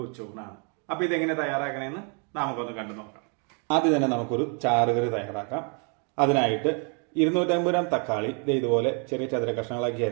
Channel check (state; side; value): quieter; left; 38.2 dB